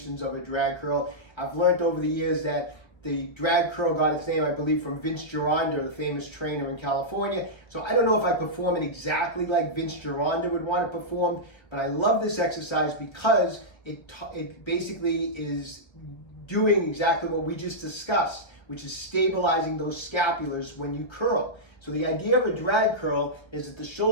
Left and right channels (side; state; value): right; late; 1.3 ms